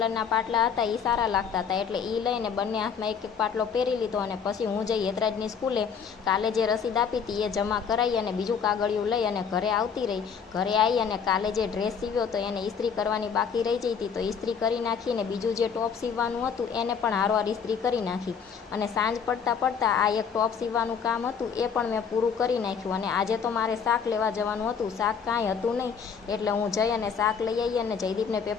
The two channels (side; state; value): right; quieter; 6.7 dB